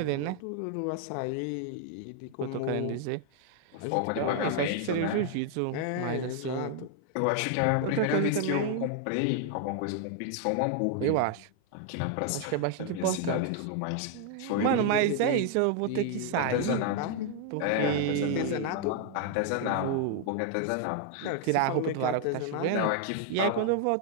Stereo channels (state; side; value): different; both; correlation 0.00